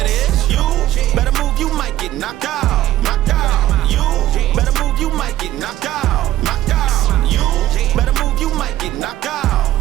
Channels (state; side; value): quieter; left; 14.1 dB